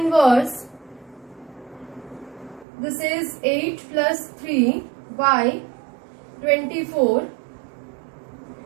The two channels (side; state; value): left; drops out; at 2.7 s